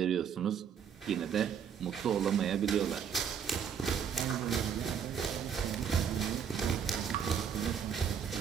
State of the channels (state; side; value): quieter; left; 7.7 dB